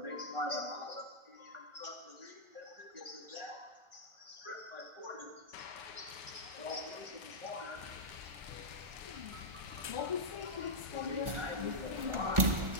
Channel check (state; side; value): late; left; 1.4 ms